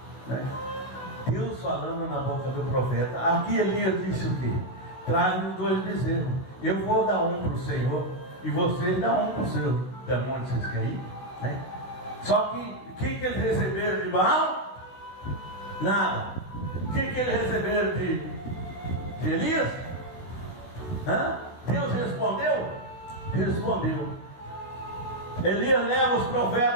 né? Deus falando na boca do profeta. Aqui Elias disse o quê? Traga-me 2 bezerros. Eu vou dar um para o Senhor, e vocês dão um para o seu demônio que vocês querem, né? Só que o que eles receberam de Baal? Nada. O que eles receberam de Elias? Deus respondeu? Respondeu. Elias leva os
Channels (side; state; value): right; late; 16 ms